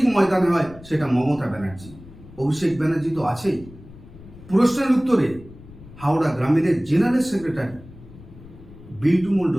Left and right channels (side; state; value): left; noise; rumble, 19 dB below the sound